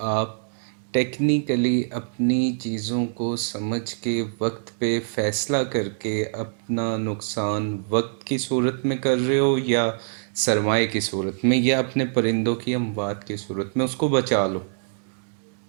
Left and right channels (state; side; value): silent; left; digital silence